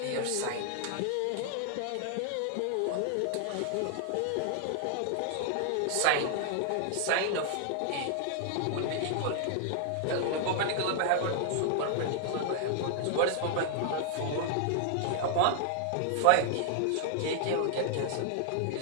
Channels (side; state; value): both; different; correlation -0.01